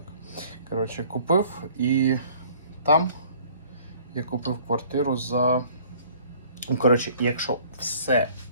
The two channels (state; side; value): inverted; both; correlation -0.54